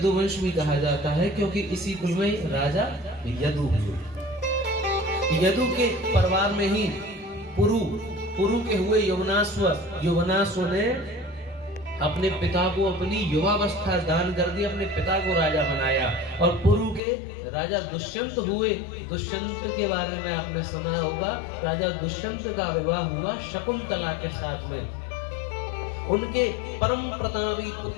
भी कहा जाता है, क्योंकि इसी कुल में राजा यदु हुए। यदु के परिवार में ही पुरु के हुए यवनाश्व, यवनाश्व ने अपने पिता को अपनी युवावस्था दान कर दी, अपने पिता को राजा बनाया। और पुरु के राजा दुष्यंत हुए। दुष्यंत के बारे में आपने सुना होगा, राजा दुष्यंत का विवाह हुआ शकुंतला के साथ में। उनके परम प्रतापी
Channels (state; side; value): drops out; right; at 17.0 s